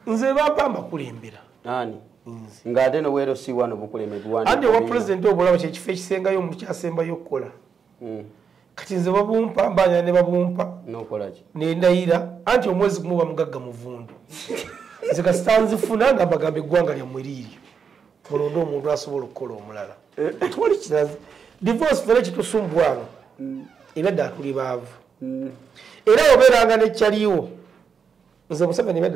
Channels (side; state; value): left; quieter; 6.4 dB